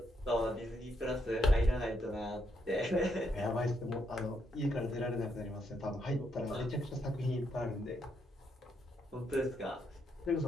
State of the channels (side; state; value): both; normal; correlation 0.77